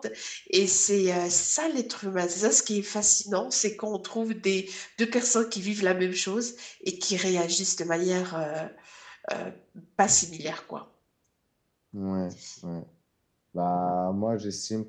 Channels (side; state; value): both; identical; correlation 1.00